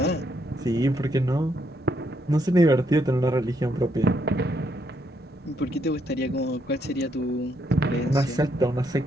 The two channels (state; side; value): normal; both; correlation 0.75